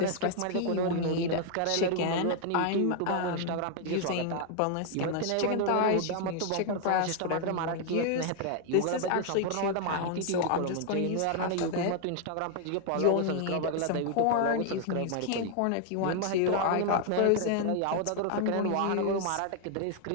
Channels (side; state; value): both; different; correlation 0.00